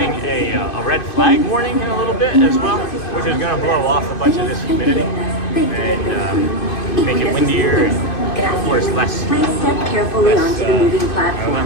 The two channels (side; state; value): right; late; 2.6 ms